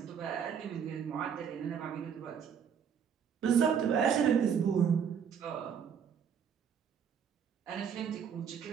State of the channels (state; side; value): quieter; left; 7.5 dB